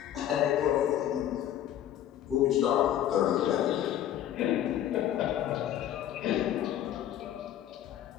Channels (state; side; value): quieter; right; 11.3 dB